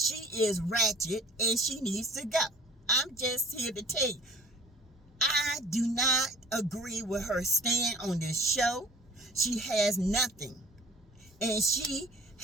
is ratchet, and she needs to go. I'm just here to tell you, I do not agree with her stand on this show. She has nothing, and she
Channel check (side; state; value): both; normal; correlation 0.49